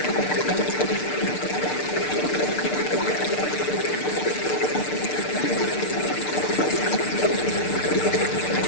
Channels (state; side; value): late; right; 6.7 ms